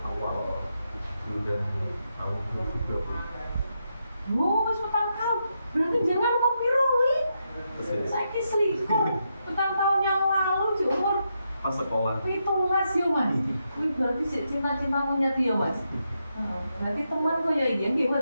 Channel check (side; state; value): both; inverted; correlation -0.83